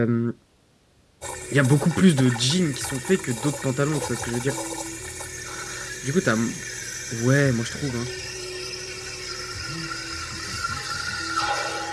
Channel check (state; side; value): identical; both; correlation 1.00